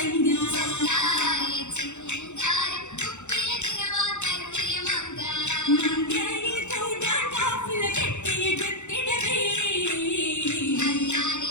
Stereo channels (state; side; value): late; right; 0.83 ms